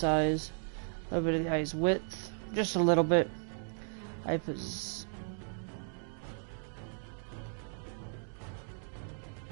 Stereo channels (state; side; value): silent; left; 54 dB below the other